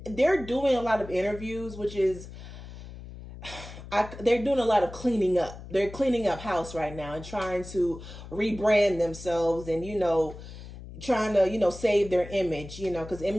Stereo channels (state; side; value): noise; left; hum, 14 dB below the sound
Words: they're doing a lot of interviews, which is, they're doing a lot of cleaning up. They're cleaning up house right now and trying to rebrand themselves and, you know, trying to, you know, save their image, you know, because